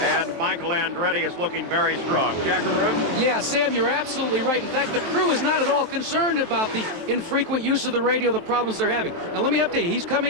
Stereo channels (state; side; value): late; left; 23 ms